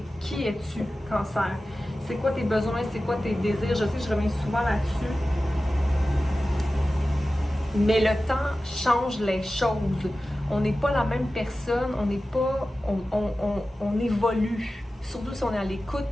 qui es-tu, Cancer? C'est quoi tes besoins, c'est quoi tes désirs? Je sais que je reviens souvent là-dessus. Mais le temps change les choses. On n'est pas la même personne, on n'est pas... On évolue. Surtout si on est à l'écoute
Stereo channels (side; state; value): both; normal; correlation 0.95